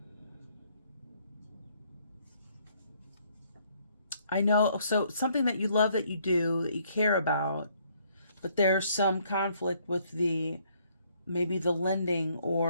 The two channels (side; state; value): both; inverted; correlation -0.66